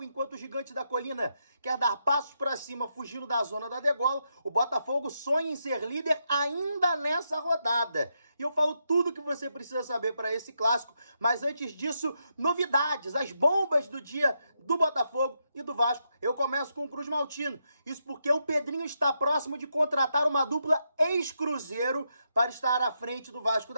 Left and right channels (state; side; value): inverted; both; correlation -0.82